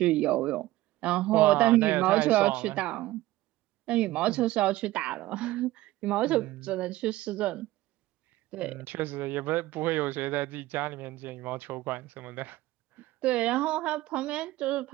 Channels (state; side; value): quieter; left; 17.1 dB